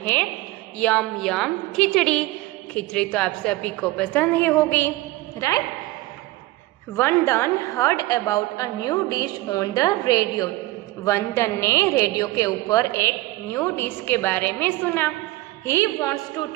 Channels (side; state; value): left; quieter; 18.7 dB